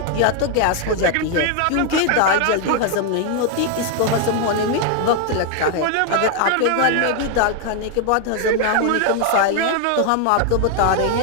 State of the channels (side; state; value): both; different; correlation 0.00